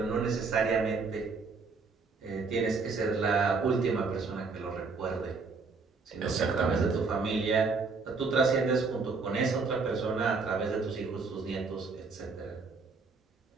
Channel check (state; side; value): quieter; left; 4.5 dB